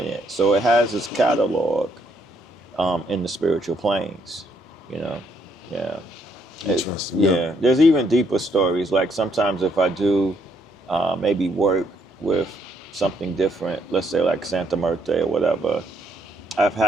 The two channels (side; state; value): both; normal; correlation 0.72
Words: it. So it has its catalog in the spiritual planes, Yeah. Interesting. Yeah. There's even deeper stories. Like sometimes if I do maybe work with something different, let's say like Santa Muerte or whatever, I've